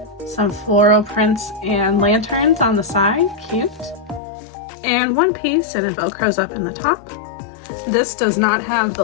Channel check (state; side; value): drops out; right; at 4.2 s